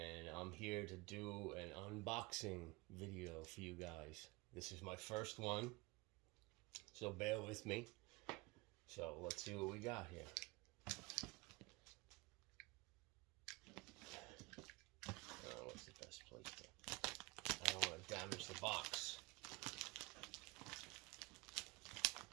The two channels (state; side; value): quieter; left; 24.1 dB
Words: I'm here to do an unboxing video for you guys. This is my first one, so bear with me. So let's see what we got here. What's the best place to? I don't want to damage the box.